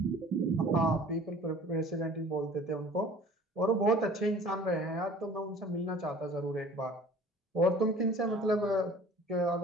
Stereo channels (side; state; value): both; normal; correlation 0.47